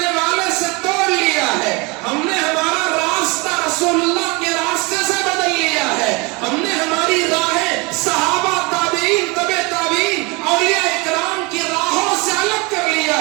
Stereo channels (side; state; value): left; quieter; 27.2 dB